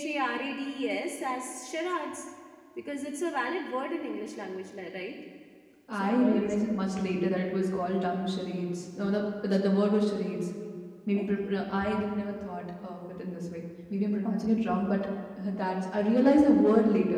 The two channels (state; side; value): identical; both; correlation 1.00